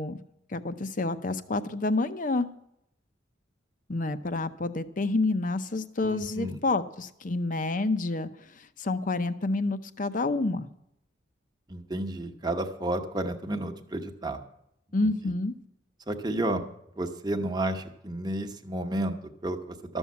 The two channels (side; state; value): both; normal; correlation 0.54